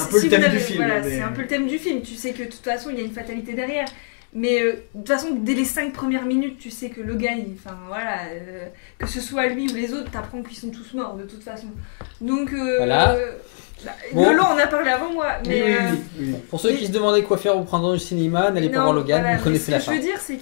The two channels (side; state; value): right; silent; digital silence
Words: si peu le vous thème avez- du film. Voilà, mais- c'est un peu le thème du film. Tu sais que de toute façon, il y a une fatalité derrière. Mais de toute façon, dès les 5 premières minutes, tu sais que le gars, enfin voilà, que ce soit lui ou les autres, t'apprends qu'ils sont tous morts de toute façon. Donc, Voilà. Bon. Lolo en a parlé avant moi. Oui, Mais, oui. Pour ceux qui se demandaient quoi faire au printemps du cinéma, n'allez pas non, voir Logan, voilà, vous connaissez ce la que je fin. veux dire, c'est